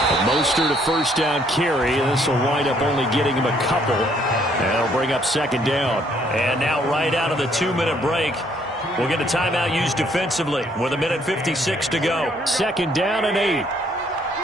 Mostert a 1st down carry. This will wind up only getting him a couple. And it'll bring up 2nd down. And now right out of the 2-minute break, we'll get a timeout used defensively with 1:56 to go. 2nd down and 8.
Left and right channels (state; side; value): normal; both; correlation 0.66